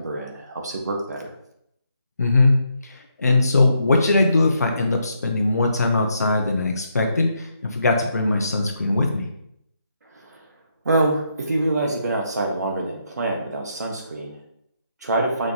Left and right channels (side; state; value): both; inverted; correlation -0.78